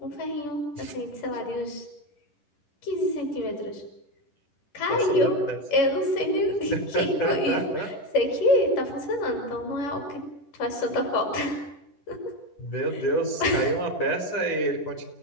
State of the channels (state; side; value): late; right; 10 ms